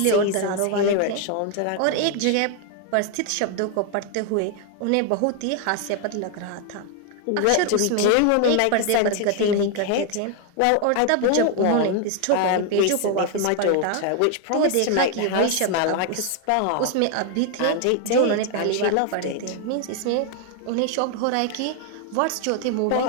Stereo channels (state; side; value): different; both; correlation 0.00